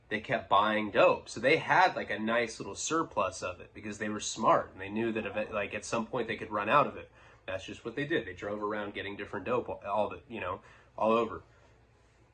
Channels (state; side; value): identical; both; correlation 1.00